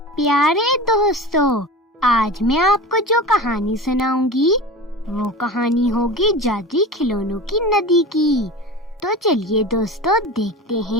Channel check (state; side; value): normal; both; correlation 0.31